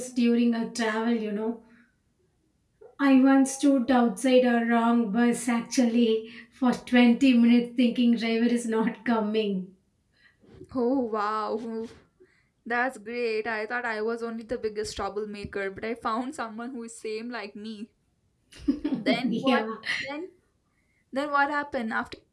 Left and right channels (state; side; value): identical; both; correlation 1.00